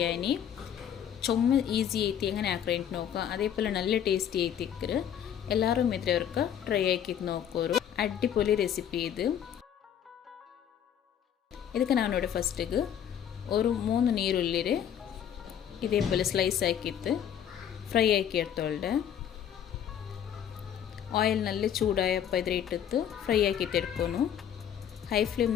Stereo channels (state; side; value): quieter; right; 9.3 dB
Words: ചുമ ഈസി ಐತಿ എങ്ങനെ ആക്രേಂಟ್ നോക്കുക അതേപോലെ നല്ല ടേസ്റ്റി ಐತಿಕ್ಕರು ಎಲ್ಲರೂ ಮಿತ್ರವರ್ಕ ಟ್ರೈ ಆಕಿತ್ ನೋಕೋರು ಅಡ್ಡಿಪೊಲಿ ರೆಸಿಪಿ ಇದಕ್ಕೆ ನಾನು ನೋಡಿ ಫಸ್ಟಿಗೆ ഒരു 3 ನೀರುಳ್ಳಿ ഇതേപോലെ സ്ലൈസ് ആക്കിയിട്ട് ഫ്രൈ ആക്കി എടുത്തോളുടെ ಆಯಿಲ್ ನಲ್ಲಿ ಚೂಡಾಯಪ್ಪ ಇದ್ರೆ ಇಟ್ಟಿತ್ತು ಫ್ರೈ ಆಕಿತ್ತು ಎಡ್ಕೊನು ಹೈ